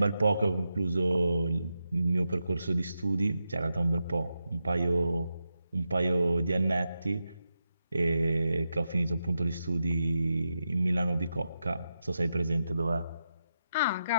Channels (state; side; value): inverted; both; correlation -0.87